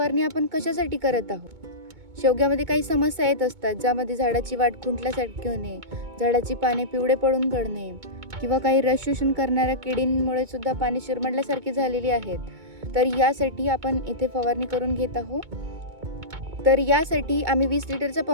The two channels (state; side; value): late; left; 2.2 ms